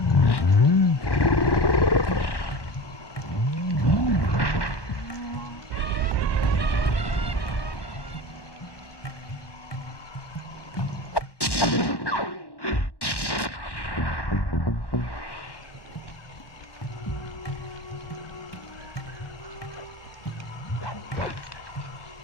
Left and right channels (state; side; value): late; right; 1.1 ms